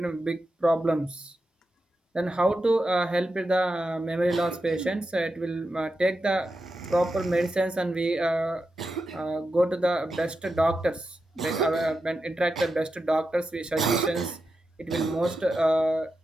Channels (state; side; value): normal; both; correlation 0.89